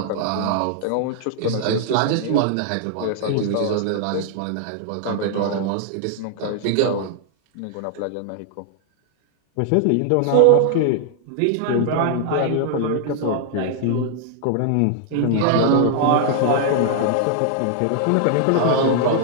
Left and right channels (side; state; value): both; different; correlation -0.01